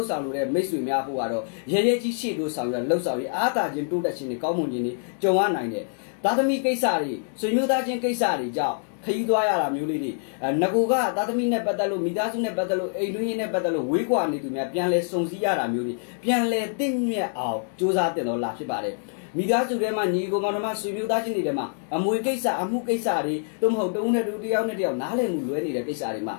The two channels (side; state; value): right; silent; digital silence